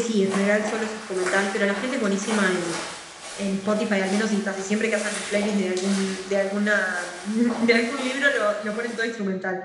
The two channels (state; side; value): identical; both; correlation 1.00